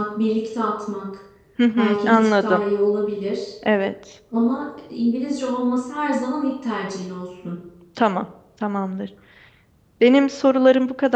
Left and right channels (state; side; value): identical; both; correlation 1.00